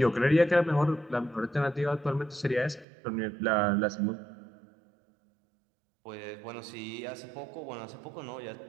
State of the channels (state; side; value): drops out; left; at 2.9 s